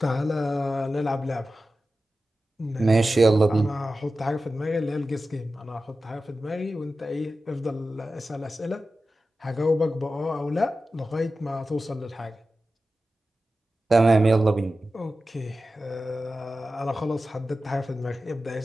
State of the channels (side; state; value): both; normal; correlation 0.93